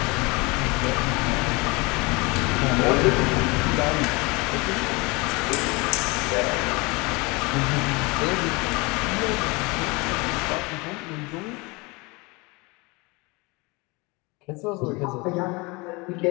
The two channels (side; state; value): right; quieter; 26.2 dB